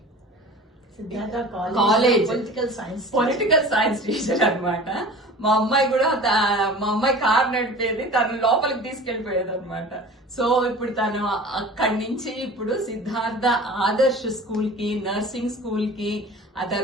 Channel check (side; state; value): both; normal; correlation 0.40